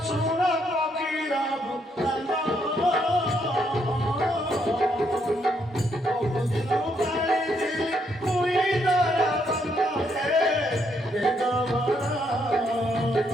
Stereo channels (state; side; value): normal; both; correlation 0.74